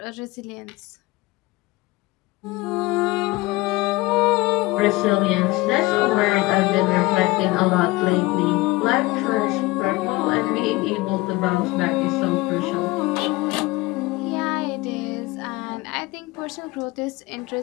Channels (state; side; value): quieter; right; 21.4 dB